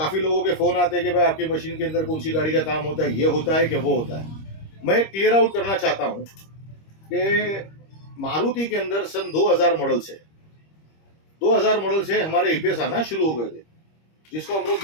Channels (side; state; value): right; late; 25 ms